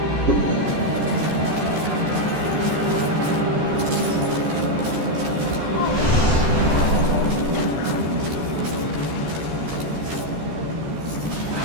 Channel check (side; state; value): left; late; 13 ms